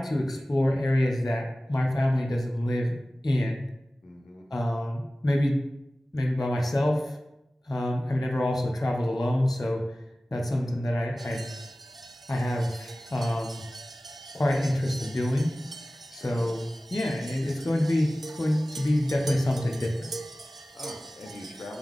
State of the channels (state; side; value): normal; both; correlation 0.97